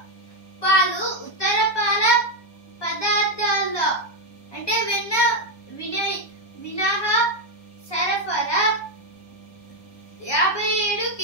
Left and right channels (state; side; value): late; right; 1.2 ms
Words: పాలు ఉత్తర పాల పదార్థాల్లో అంటే వెన్న మినహా సరఫరా 57